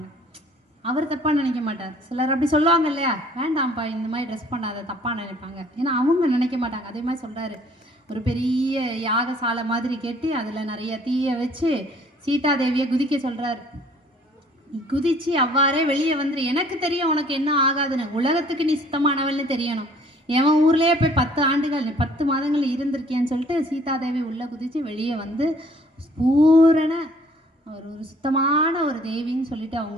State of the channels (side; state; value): both; normal; correlation 0.57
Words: அவர் தப்பாக நினைக்க மாட்டார். சிலர் அப்படி சொல்லுவாங்க இல்லையா, வேண்டாம்ப்பா இந்த மாதிரி ட்ரெஸ் பண்ணாத தப்பாக நினைப்பாங்க, ஏன்னா அவங்க நினைக்க மாட்டாங்க. அதே மாதிரி சொல்கிறாரு, ஒரு பெரிய யாகசாலை மாதிரி கட்டி அதில் நிறைய தீயை வச்சு சீதாதேவியை குதிக்க சொல்கிறார். குதிச்சு அவ்வாறே வெளியே வந்துரு, எனக்கு தெரியும் உனக்கு என்ன ஆகாதுன்னு, உலகத்துக்கு நீ சுத்தமானவள்னு தெரியணும். எவன் ஊர்லேயே போய் 10 ஆண்டுகள் 10 மாதங்கள் இருந்திருக்கேன்னு சொல்லிட்டு சீதாதேவி உள்ளே குதித்து வெளியே வந்து பூரண ஒரு சுத்தமான ஒரு தேவின்னு சொல்லிட்டு